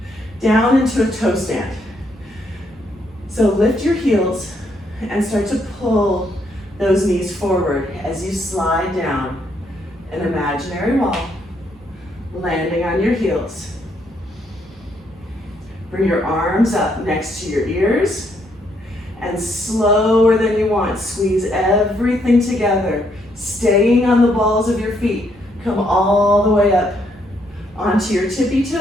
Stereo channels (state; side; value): normal; both; correlation 0.73